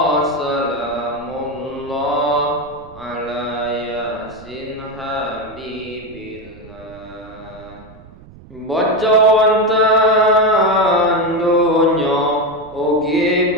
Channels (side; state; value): right; noise; rumble, 21 dB below the sound